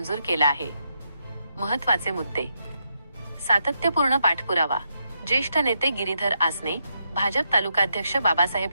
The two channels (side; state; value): both; inverted; correlation -0.81